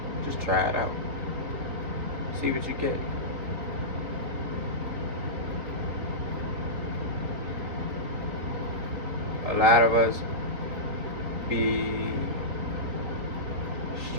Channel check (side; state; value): left; late; 3.6 ms